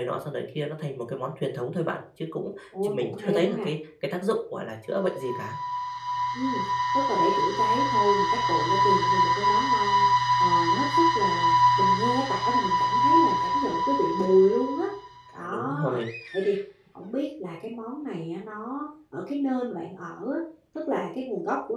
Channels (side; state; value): both; identical; correlation 1.00